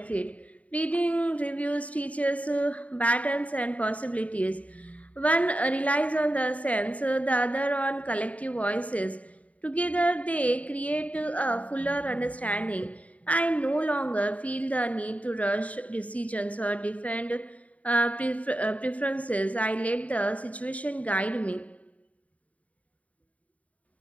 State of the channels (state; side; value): late; right; 0.068 ms